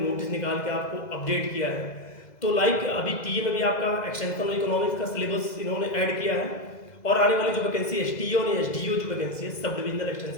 नोटिस निकाल के आपको अपडेट किया है। तो अभी टीए में भी आपका एक्सटेंशन इकोनॉमिक्स का सिलेबस इन्होंने ऐड किया है और आने वाली जो वैकेंसी एसटीओ और एसडीओ जो वैकेंसी है सब डिविजनल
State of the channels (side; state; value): right; late; 2.0 ms